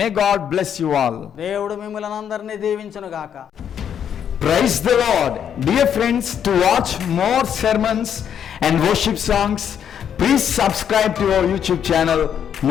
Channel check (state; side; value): quieter; right; 8.7 dB